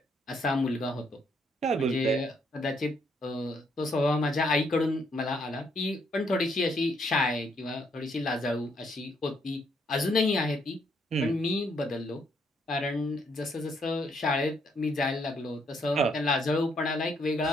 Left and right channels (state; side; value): normal; both; correlation 0.72